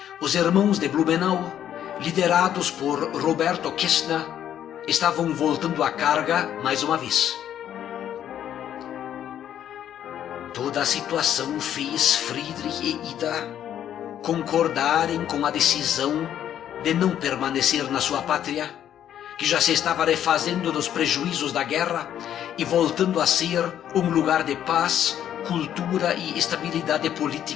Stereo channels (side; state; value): right; quieter; 10.4 dB